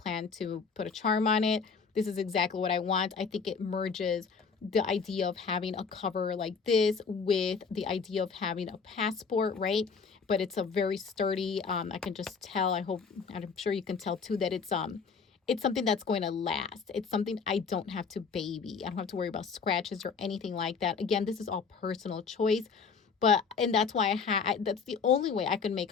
to put a charm on it. This is exactly what I want. I think it merges the idea of having a cover like this with the idea of having a passport, right? But it's a very sturdy, I can just tell, I'm sure you can tell too, that it's something that's going to last. It's something I don't have to baby. I don't have to worry about scratches or anything like that. Again, this is all personal choice, and that's why that's the only way I can make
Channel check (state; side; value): quieter; right; 5.4 dB